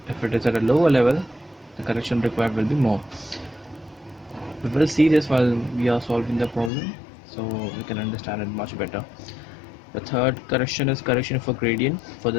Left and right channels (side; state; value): right; drops out; at 6.7 s